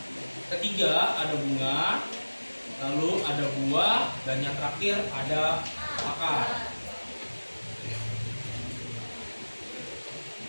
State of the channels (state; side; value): inverted; both; correlation -1.00